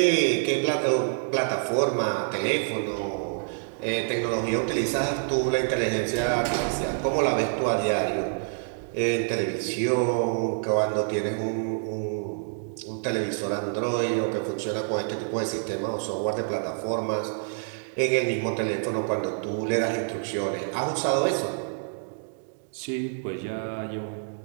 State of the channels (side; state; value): left; silent; digital silence